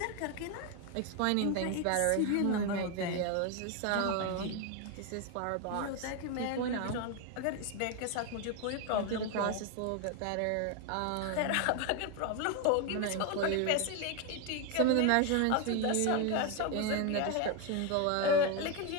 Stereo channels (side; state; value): both; different; correlation 0.01